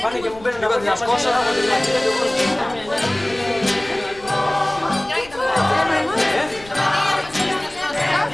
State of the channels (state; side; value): noise; left; rumble, 21 dB below the sound